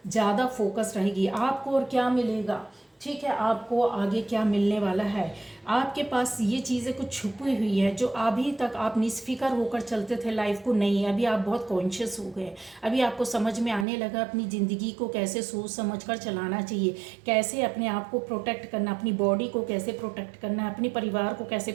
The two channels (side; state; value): left; drops out; at 13.9 s